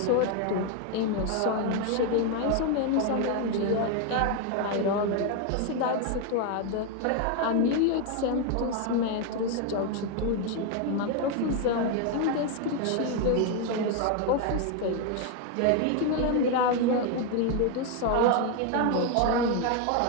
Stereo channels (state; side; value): different; both; correlation 0.01